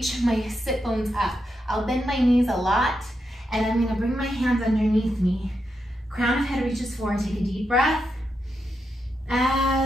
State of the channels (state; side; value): normal; both; correlation 0.85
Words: my sit bones up. I'll bend my knees a lot, and I'm gonna bring my hands underneath me. Crown of head reaches forward, take a deep breath.